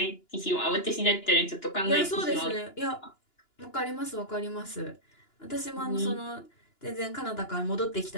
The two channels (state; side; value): late; right; 2.9 ms